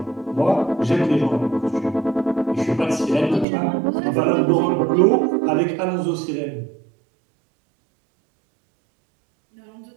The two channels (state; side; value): drops out; left; at 3.5 s